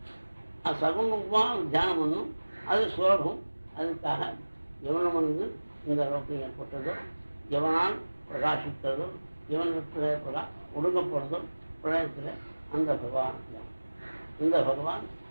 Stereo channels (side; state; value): both; inverted; correlation -1.00